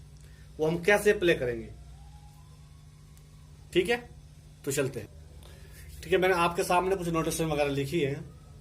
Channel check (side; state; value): both; identical; correlation 1.00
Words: वो हम कैसे प्ले करेंगे, ठीक है? तो चलते हैं। ठीक है, मैंने आपके सामने कुछ नोटेशन वगैरह लिखी है,